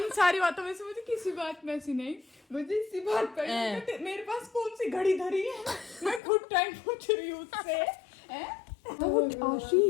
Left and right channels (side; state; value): right; drops out; at 6.2 s